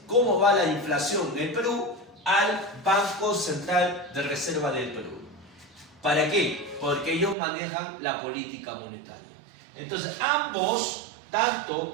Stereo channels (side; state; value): left; drops out; at 7.4 s